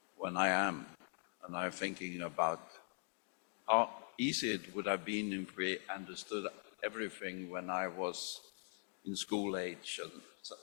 when I am, and I'm thinking about how easy it would have been if we understood everything when I was in school age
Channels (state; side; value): silent; right; digital silence